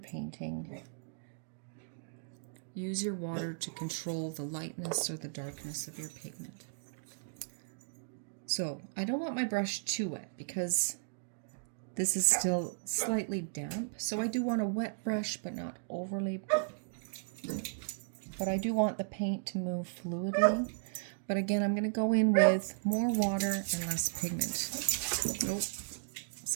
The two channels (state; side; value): silent; left; digital silence